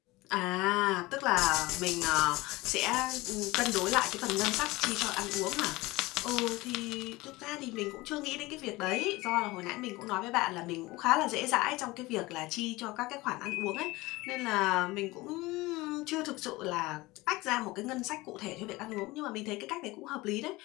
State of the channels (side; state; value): right; quieter; 20.9 dB